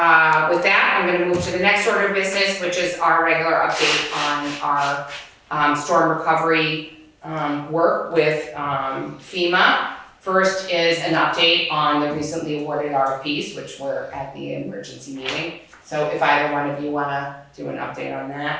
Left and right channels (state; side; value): identical; both; correlation 1.00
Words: with that, I'm gonna move to the next order of business, which is our regular update on our storm recovery work with FEMA. First is an update on the recently awarded RFPs, which were at the emergency meeting. So if either one of you wanna do an update on